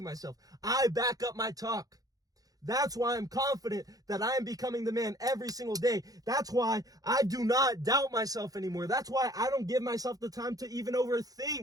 myself. I back up my talk. That's why I'm confident that I am becoming the man every single day. That's why I do not doubt myself anymore. That's why I don't give myself the time to even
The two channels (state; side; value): late; left; 0.18 ms